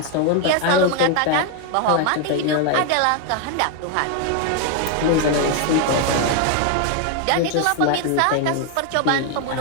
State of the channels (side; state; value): both; different; correlation 0.01